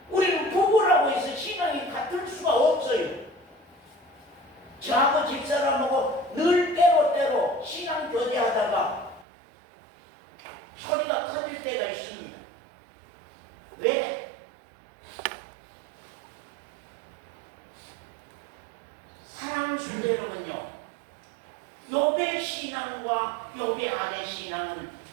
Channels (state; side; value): drops out; left; at 9.2 s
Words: 우리는 부부라고 해서 신앙이 같을 수가 없어요. 저하고 집사람하고 늘 때로 신앙 교제하다가 소리가 커질 때가 있습니다. 왜? 사랑 순대로는요. 욥의 신앙과 욥의 아내 신앙은